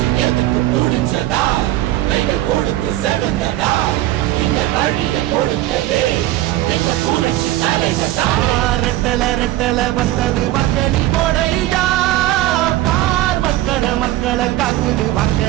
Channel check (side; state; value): left; quieter; 15.3 dB